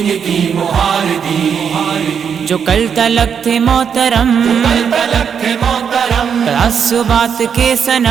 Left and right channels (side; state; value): left; quieter; 7.3 dB